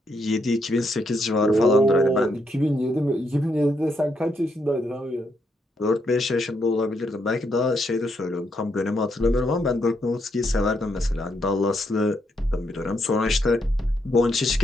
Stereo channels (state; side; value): normal; both; correlation 0.77